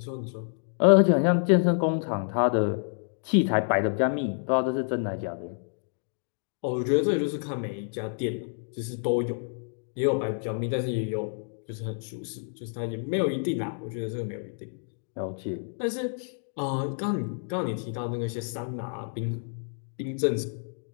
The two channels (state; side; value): silent; right; digital silence